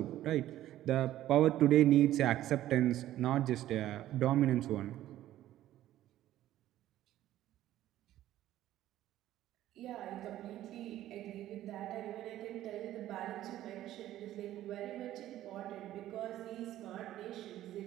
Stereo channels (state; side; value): quieter; left; 13.5 dB